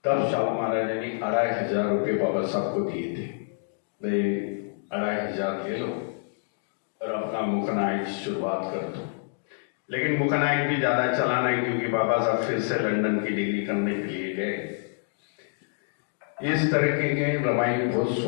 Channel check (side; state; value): right; silent; digital silence